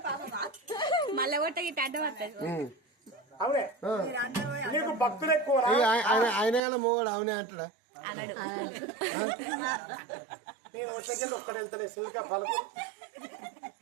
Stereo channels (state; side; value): drops out; left; at 6.6 s